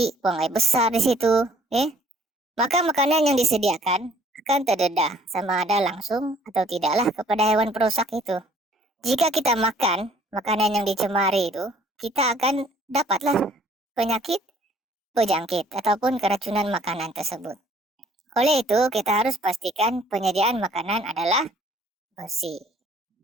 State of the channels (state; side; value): normal; both; correlation 0.58